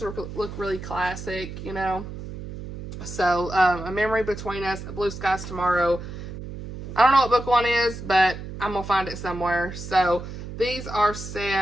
look really classic, you know. So, A Memory Between Us, Blue Skies Tomorrow. I don't know what book 1 is, but I'm going to find it somewhere. So, these are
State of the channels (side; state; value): right; noise; hum, 10 dB below the sound